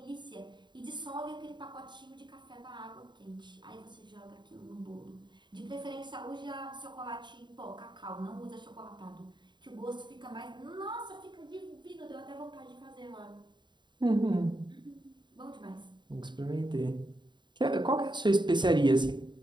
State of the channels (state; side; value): late; left; 0.22 ms